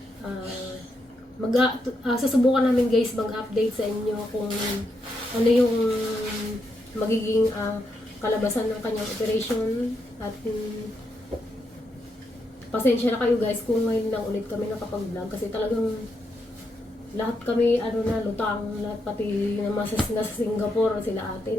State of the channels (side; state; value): both; normal; correlation 0.81